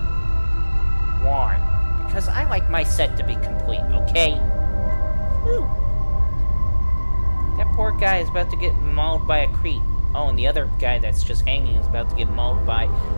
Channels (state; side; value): inverted; both; correlation -1.00